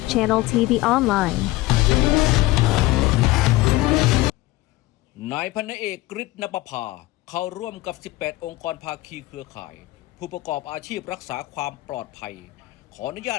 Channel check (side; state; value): right; quieter; 18.9 dB